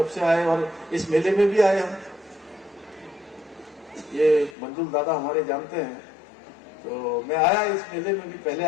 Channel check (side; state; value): right; drops out; at 4.5 s